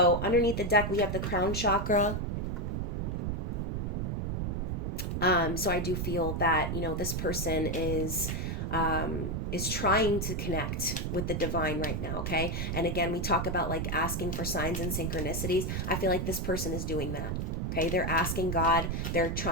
underneath the deck, we have the crown chakra. So I do feel that, this person is trying to connect with the divine right now, okay? And again, we talk about like asking for signs and synchronicities. I feel like this person is doing that. Okay, they're asking God, they're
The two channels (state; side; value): noise; right; rumble, 1 dB below the sound